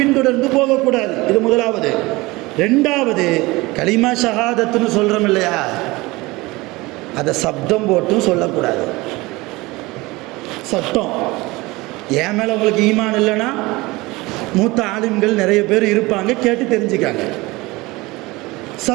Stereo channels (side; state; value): left; quieter; 21.8 dB